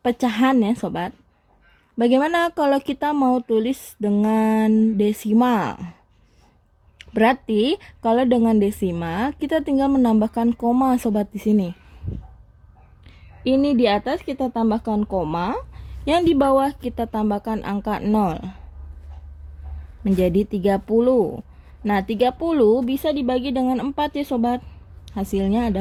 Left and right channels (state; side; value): identical; both; correlation 1.00